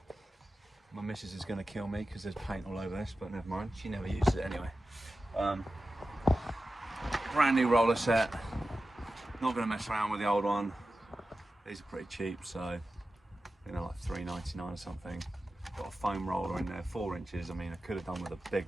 My missus is going to kill me because there's paint all over this, but never mind. She never uses it anyway. Brand new roller set. Not going to mess around with the old one. These are pretty cheap, so you know, like $3.99 or something. Got a foam roller in there, 4 inches. I mean, I could have done with a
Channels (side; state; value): both; normal; correlation 0.93